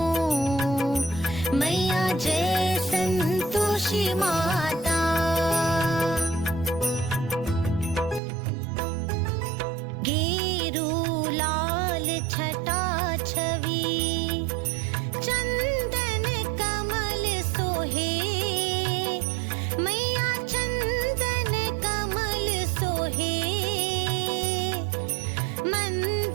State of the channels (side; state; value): left; drops out; at 8.2 s